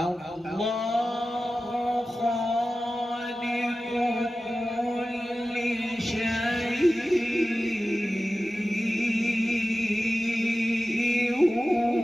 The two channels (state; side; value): normal; both; correlation 0.95